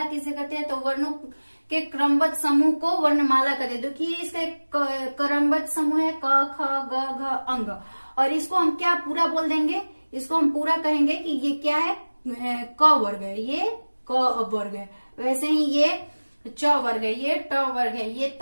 किसे कहते हैं। तो वर्णों के क्रमबद्ध समूह को वर्णमाला कहते हैं। देखिए इसका एक क्रमबद्ध समूह है क ख ग घ अंग, और इसको हम क्या पूरा बोल देंगे, इसको हम पूरा कहेंगे कि ये क्या है, क वर्ग है, ये क वर्ग है। वैसे ही ये च वर्ग है, ये ट वर्ग है, ये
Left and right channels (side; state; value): both; inverted; correlation -1.00